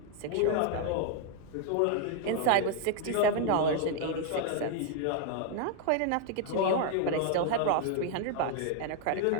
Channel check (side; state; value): both; different; correlation 0.00